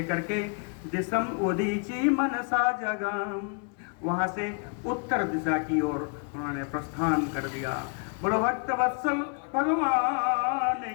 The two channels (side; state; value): right; quieter; 39.5 dB